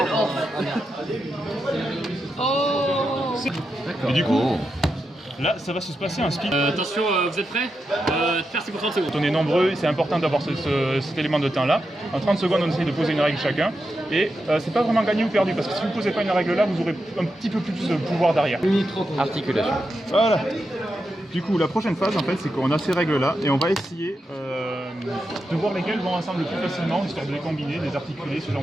Oh. Et du coup, là, ça va se passer un speed. Attention, vous êtes prêts? Faire pour 30 secondes. On est nombreux, c'est important d'avoir cet élément de temps là. En 30 secondes, on essaye de poser une règle chacun. Et c'est pas vraiment gagné ou perdu, parce que si vous ne posez pas une règle là, vous aurez un petit peu plus de pouvoir derrière. Articulation. Voilà. Du coup, la prochaine phase, en fait, c'est qu'on a ces règles-là et on va essayer de voir lesquelles vont ensemble le plus facilement, histoire de les combiner, de les articuler, ce genre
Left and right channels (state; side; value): normal; both; correlation 0.87